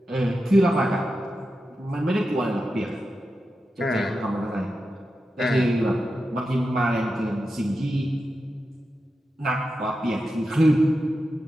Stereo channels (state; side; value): normal; both; correlation 0.90